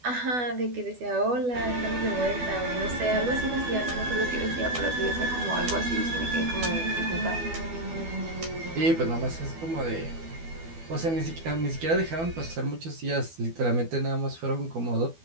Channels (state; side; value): late; left; 12 ms